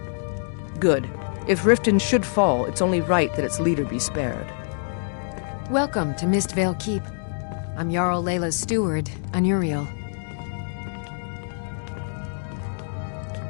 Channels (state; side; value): silent; right; digital silence